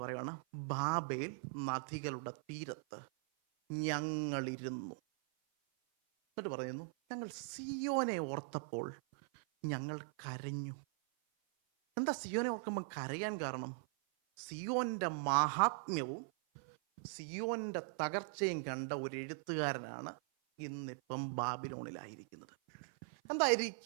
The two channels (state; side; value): silent; left; 51 dB below the other